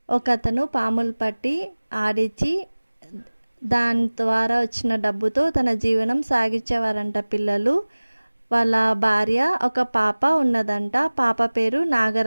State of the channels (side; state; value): both; inverted; correlation -1.00